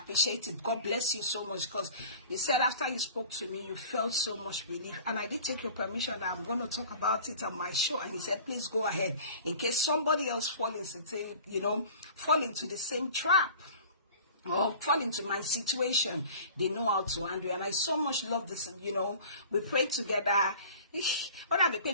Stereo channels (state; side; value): inverted; both; correlation -0.43